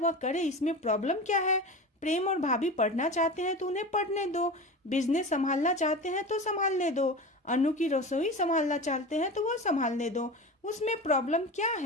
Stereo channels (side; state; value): both; normal; correlation 0.30